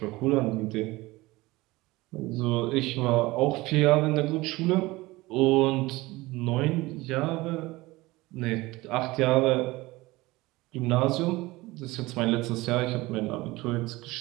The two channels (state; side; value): quieter; left; 20.4 dB